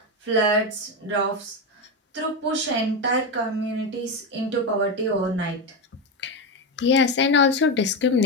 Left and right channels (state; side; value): normal; both; correlation 0.13